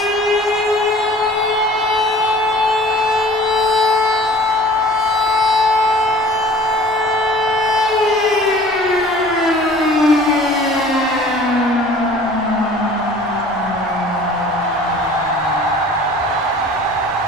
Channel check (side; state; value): both; normal; correlation 0.47